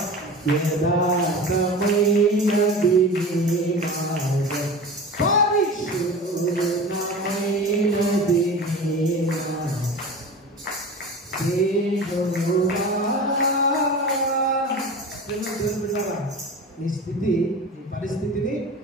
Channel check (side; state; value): both; normal; correlation 0.33